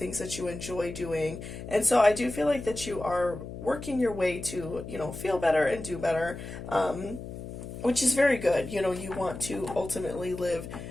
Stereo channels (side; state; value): left; noise; hum, 10 dB below the sound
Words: that you enjoy doing. And so I do feel like that you are working your way to, feel better and do better, which is very good. You want to ultimately live